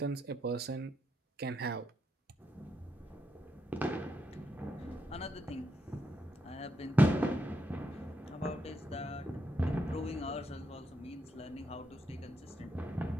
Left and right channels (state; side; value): normal; both; correlation 0.80